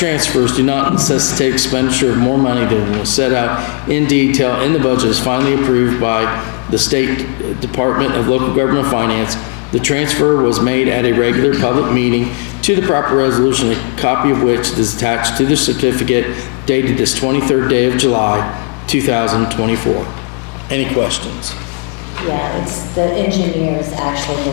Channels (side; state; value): right; quieter; 36.5 dB